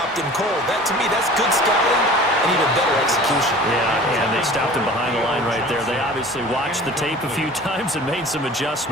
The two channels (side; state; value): both; normal; correlation 0.43